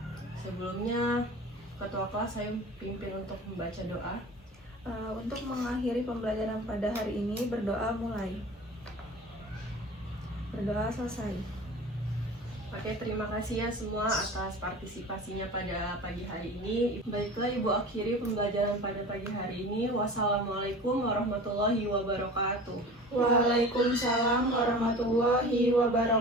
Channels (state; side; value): normal; both; correlation 0.38